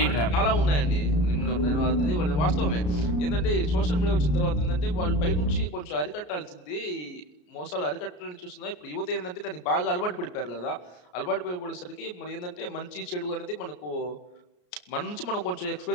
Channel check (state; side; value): late; right; 33 ms